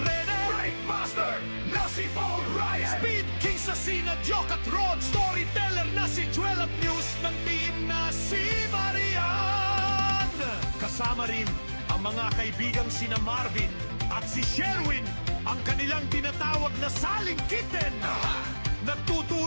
Breakmaster na si Paul Ryan, Speed King sa sina Joke at Rod, Storyteller na si Joel at News ng team na si Marian. Kasama rin ang mga kaibigang sina Marvin at si Sherwin, ang kanilang tinatawag na saling kitten.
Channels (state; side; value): inverted; both; correlation -1.00